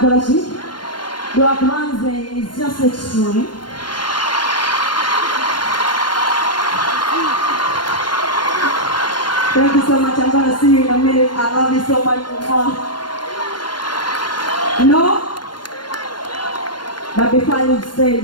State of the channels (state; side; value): late; right; 0.71 ms